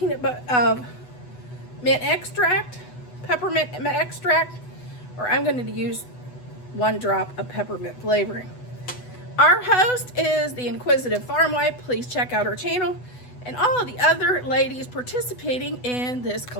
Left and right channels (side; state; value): right; late; 8.1 ms